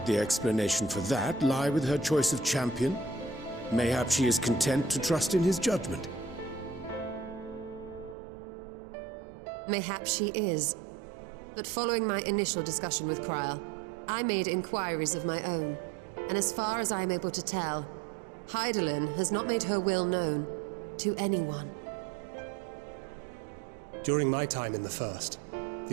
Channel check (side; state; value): left; drops out; at 8.2 s